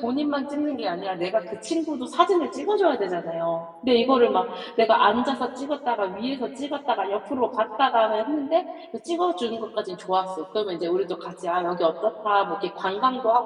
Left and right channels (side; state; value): both; identical; correlation 1.00